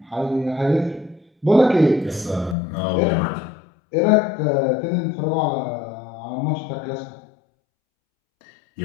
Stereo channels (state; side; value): drops out; right; at 2.6 s